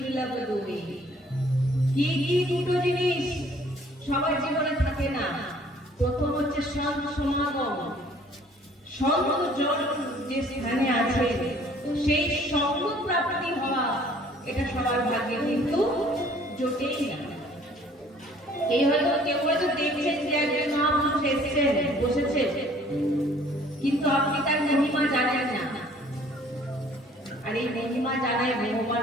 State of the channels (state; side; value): normal; both; correlation 0.56